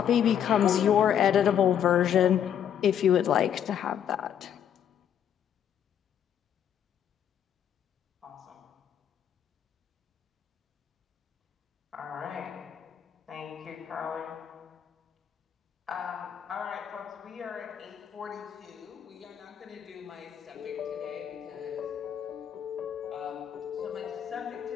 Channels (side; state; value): right; quieter; 9.2 dB